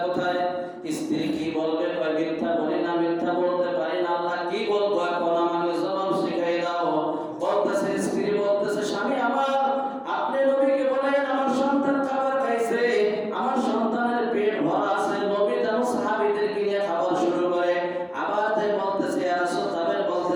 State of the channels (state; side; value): identical; both; correlation 1.00